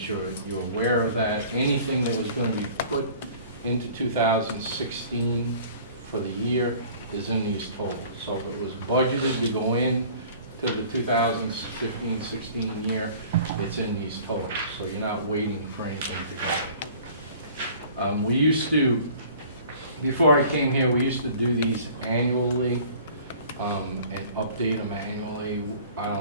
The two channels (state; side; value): inverted; both; correlation -0.48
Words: you're aware of that. Anything that was going to be put into 2016 for the year is in these totals. So if it was budgeted to go in to the 2015-16 year, it's in these totals. So you're not waiting for anything to go in. We used to, before I came here, we used to do these annually. and update them annually. I